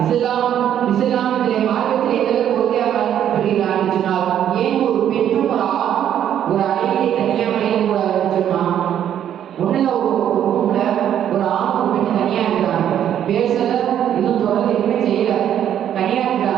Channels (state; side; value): quieter; left; 10.1 dB